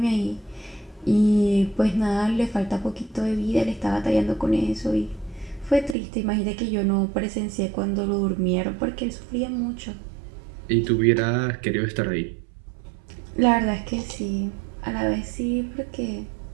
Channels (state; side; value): drops out; left; at 6.0 s